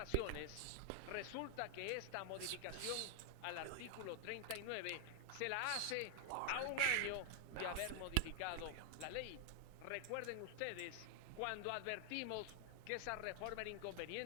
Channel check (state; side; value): different; both; correlation 0.00